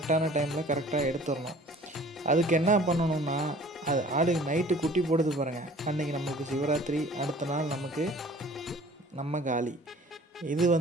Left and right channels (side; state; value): both; normal; correlation 0.50